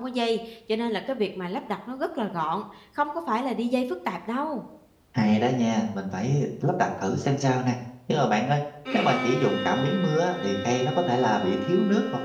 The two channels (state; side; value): identical; both; correlation 1.00